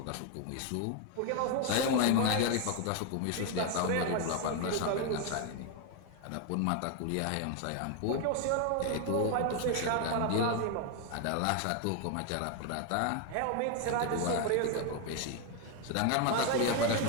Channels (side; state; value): both; different; correlation 0.01